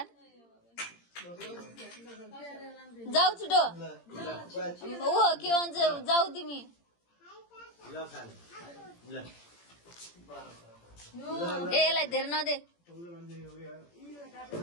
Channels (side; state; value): right; late; 17 ms